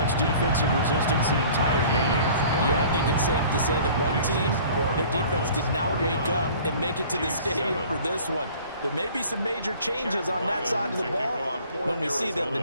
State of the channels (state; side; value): inverted; both; correlation -0.48